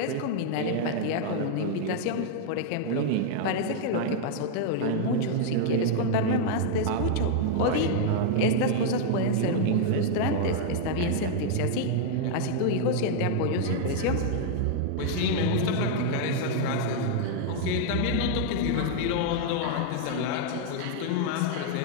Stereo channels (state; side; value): different; both; correlation -0.01